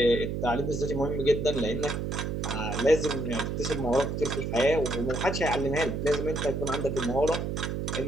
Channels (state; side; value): noise; right; hum, 2 dB below the sound